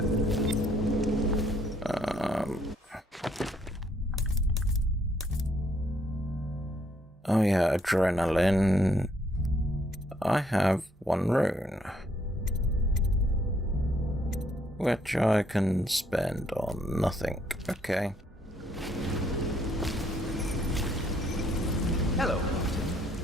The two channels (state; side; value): normal; both; correlation 0.69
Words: Oh yeah, adrenaline. I have one rune, which I can spend on nothing. Okay. Hello,